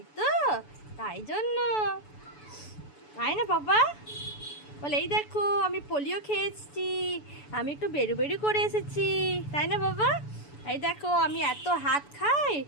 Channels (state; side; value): late; right; 6.9 ms